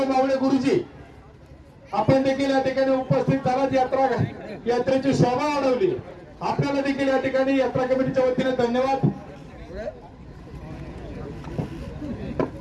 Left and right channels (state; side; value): identical; both; correlation 1.00